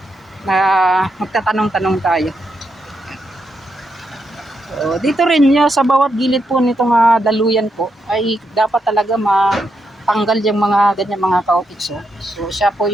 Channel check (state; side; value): normal; both; correlation 0.82